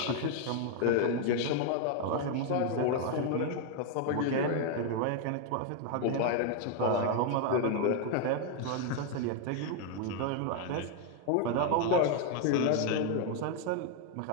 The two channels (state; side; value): different; both; correlation 0.01